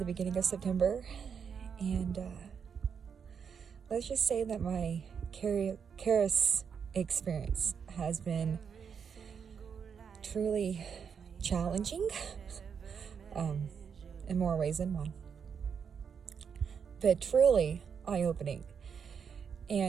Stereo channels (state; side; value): quieter; left; 6.8 dB